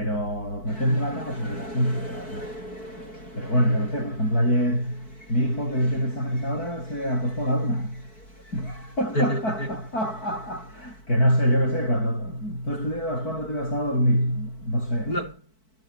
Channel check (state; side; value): late; right; 4.6 ms